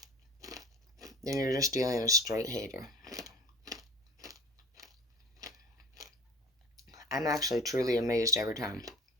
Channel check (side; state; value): both; normal; correlation 0.39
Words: then you're just dealing with a straight hater. I'm actually truly amazed every time